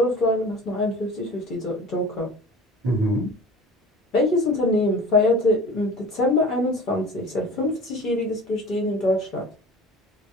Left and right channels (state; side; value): normal; both; correlation 0.40